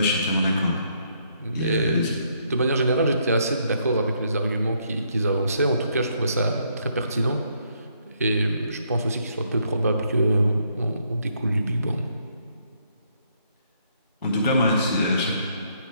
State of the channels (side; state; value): both; inverted; correlation -0.71